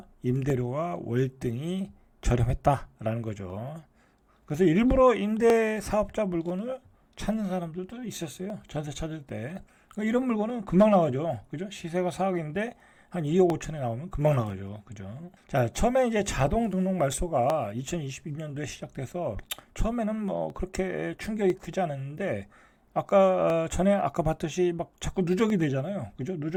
임대료와 월등히 저렴했다라는 거죠. 그래서 일부러 임대 사업자 물건을 찾는 사람들도 있었어요. 전세 찾을 때. 이런 물건은 금방 나가죠. 그죠? 시세가 4억인데 한 2억 5천에 나오면 금방 나가죠. 그죠? 자, 처음에 이제 자동 등록 말소가 2022년도에 시작돼서 처음에는 그렇게 충격이 크지 않았는데 아까 봤듯이 막 자꾸 누적이 되잖아요. 그죠?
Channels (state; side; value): identical; both; correlation 1.00